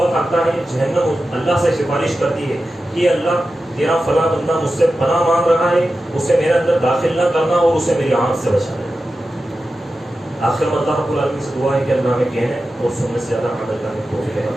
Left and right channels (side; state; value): both; normal; correlation 0.92